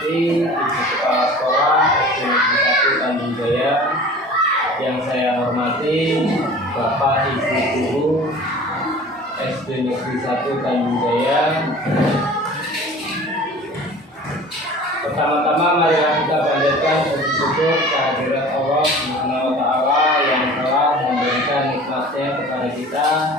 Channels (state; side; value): normal; both; correlation 0.42